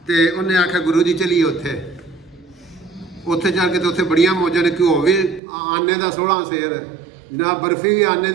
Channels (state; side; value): drops out; left; at 5.4 s